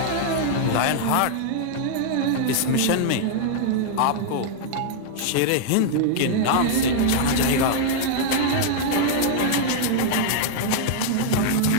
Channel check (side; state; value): both; different; correlation -0.01